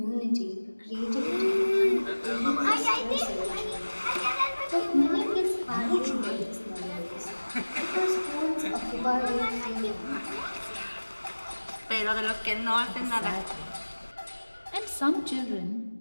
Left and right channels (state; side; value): inverted; both; correlation -1.00